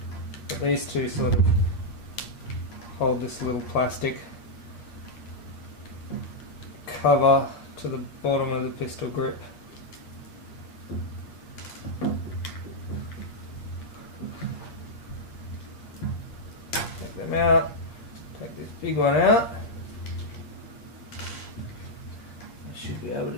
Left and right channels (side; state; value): right; late; 8.5 ms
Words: these two sort of hold this little plastic cover to the bottom of the pistol grip. Take them out, take this big one out. I should be able to